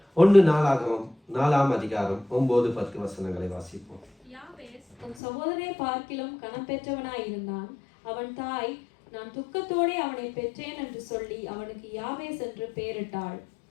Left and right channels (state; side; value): drops out; right; at 5.2 s